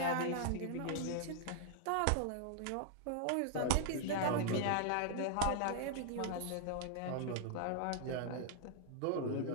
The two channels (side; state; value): both; different; correlation -0.01